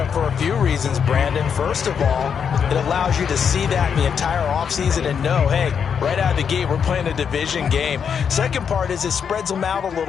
for a few reasons, Brandon. First of all, it allows you to see that in the entire offseason and know, hey, right out of the gate, we're playing a division game. Second part is it spreads them out a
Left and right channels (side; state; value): right; quieter; 7.1 dB